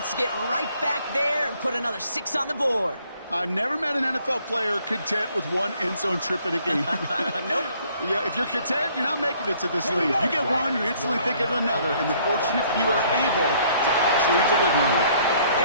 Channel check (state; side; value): inverted; both; correlation -0.62